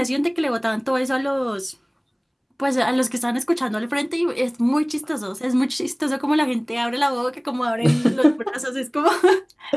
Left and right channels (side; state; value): both; identical; correlation 1.00